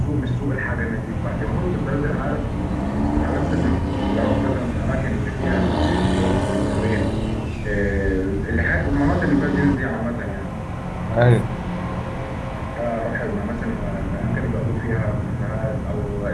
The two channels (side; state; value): both; identical; correlation 1.00